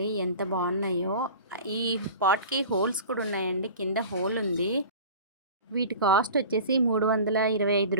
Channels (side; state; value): both; inverted; correlation -0.39